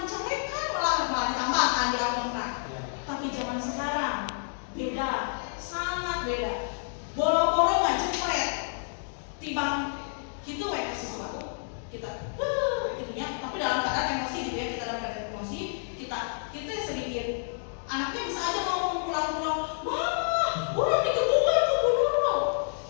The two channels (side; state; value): right; silent; digital silence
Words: diceprekan, malah ditambahkan di akhirnya. Tapi zaman sekarang beda, sangat beda. Boro-boro nggak jepret, tibang gitu we kasih sesuatu kita gitunya, tapi dalam keadaan emosi gitu ya, kita dalam keadaan emosi kita sedikit, anaknya bisa aja ngomong pulang-pulang, mama orang dikebukan ke gunung,